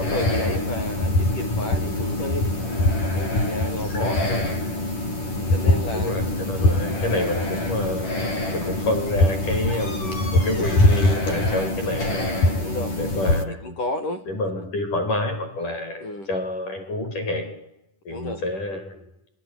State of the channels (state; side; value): late; right; 10 ms